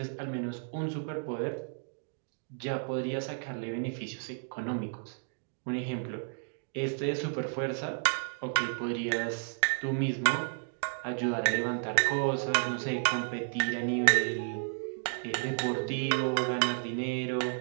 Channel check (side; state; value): left; silent; 56 dB below the other